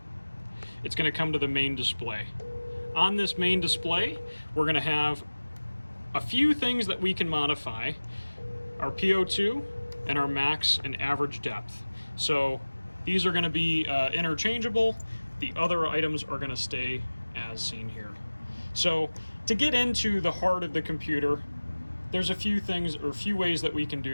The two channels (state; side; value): inverted; both; correlation -1.00